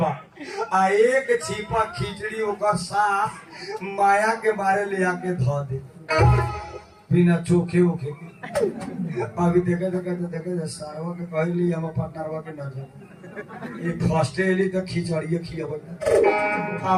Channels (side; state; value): both; identical; correlation 1.00